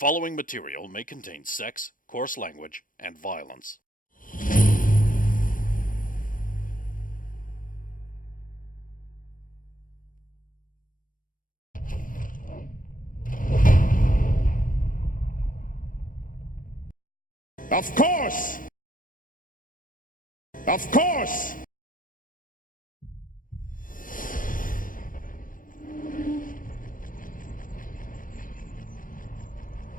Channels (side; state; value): right; late; 0.40 ms